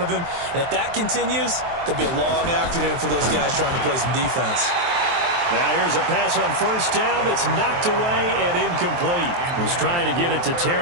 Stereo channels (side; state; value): left; late; 23 ms